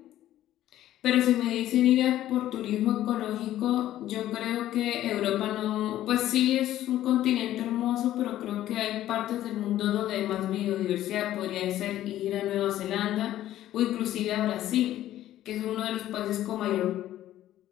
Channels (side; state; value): right; quieter; 13.3 dB